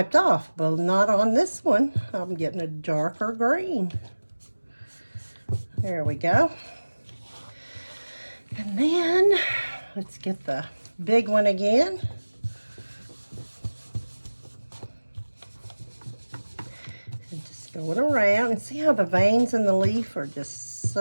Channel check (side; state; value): both; inverted; correlation -1.00